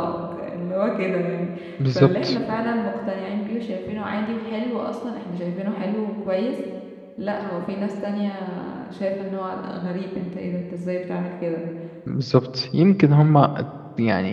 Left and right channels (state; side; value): identical; both; correlation 1.00